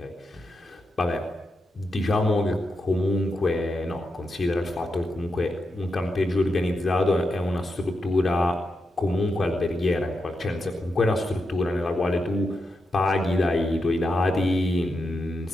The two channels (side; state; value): both; normal; correlation 0.86